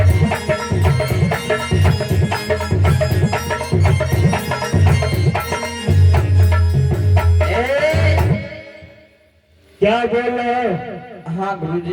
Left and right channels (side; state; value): both; identical; correlation 1.00